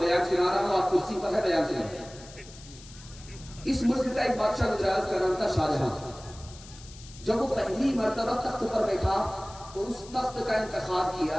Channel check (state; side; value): noise; left; hiss, 19 dB below the sound